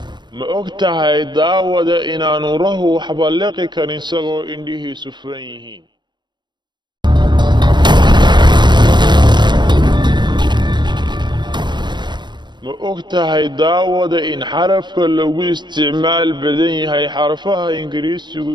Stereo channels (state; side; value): late; left; 0.22 ms